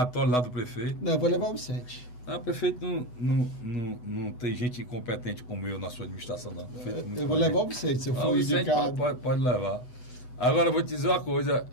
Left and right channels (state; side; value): late; right; 8.1 ms